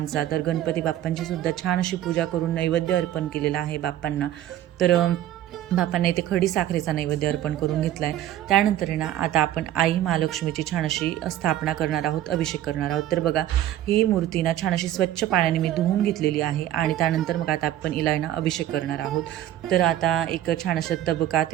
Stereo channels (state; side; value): quieter; left; 12.5 dB